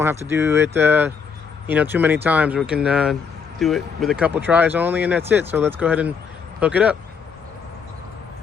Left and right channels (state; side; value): quieter; right; 6.0 dB